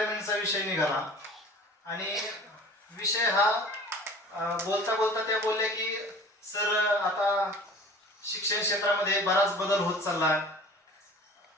विषय निघाला आणि विषय हा बोलता बोलता त्या बोलल्या की सर आता शिक्षण क्षेत्रामध्ये बराच बदल होत चालला,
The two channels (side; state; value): both; normal; correlation 0.43